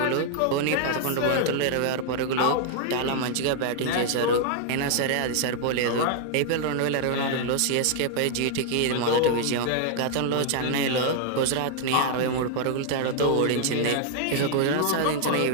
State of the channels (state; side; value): different; both; correlation 0.00